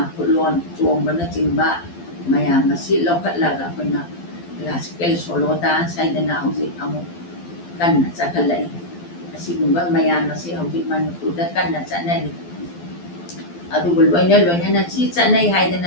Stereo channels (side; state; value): right; late; 12 ms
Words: ꯈꯨꯠꯂꯣꯟ ꯆꯣꯡꯕꯅꯆꯤꯡꯕ ꯃꯌꯥꯝ ꯑꯁꯤ ꯂꯧꯈꯠꯂꯒ ꯑꯩꯈꯣꯏꯅ ꯀ꯭ꯂꯥꯁꯤꯀꯦꯜ ꯁꯣꯂꯣ ꯗꯥꯟꯁ ꯍꯥꯏꯗꯅ ꯍꯧꯖꯤꯛ ꯑꯃꯨꯛ ꯀꯟꯅ ꯆꯠꯈꯠꯂꯛꯏ꯫ ꯑꯁꯤꯒꯨꯝꯕ ꯃꯌꯥꯝ ꯑꯁꯤ ꯍꯧꯖꯤꯛ ꯃꯅꯤꯄꯨꯔꯗ ꯀꯟꯅ ꯆꯠꯅꯔꯤ꯫ ꯑꯗꯨꯕꯨ ꯂꯣꯏꯅꯅ ꯁꯤ ꯆꯠꯅꯩ